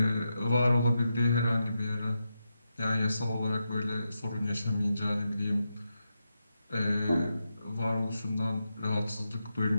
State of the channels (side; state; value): both; inverted; correlation -0.87